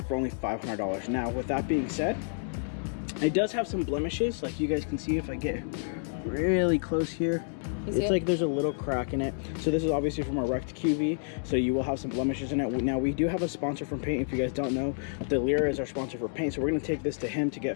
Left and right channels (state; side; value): silent; right; digital silence